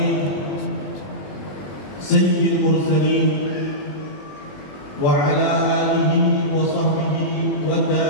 sayyidil mursalin wa ala alihi wa sahbihi wa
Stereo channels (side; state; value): right; late; 20 ms